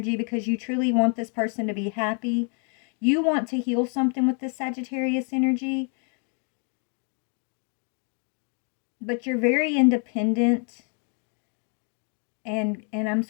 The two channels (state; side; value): quieter; right; 39.9 dB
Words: because you truly want this person to be happy. You want to heal something with this Sagittarius energy, but you're very independent. And I'm